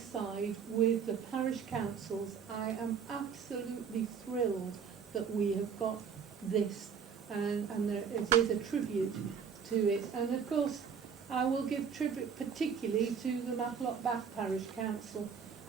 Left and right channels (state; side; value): quieter; left; 6.8 dB